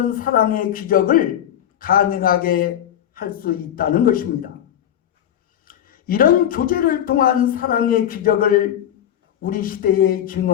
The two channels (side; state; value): right; quieter; 10.6 dB